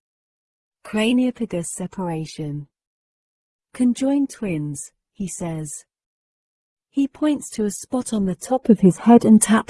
Craniopagus separation. Conjoined twins, he says. He points to a spot on the top of his head and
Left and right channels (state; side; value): identical; both; correlation 1.00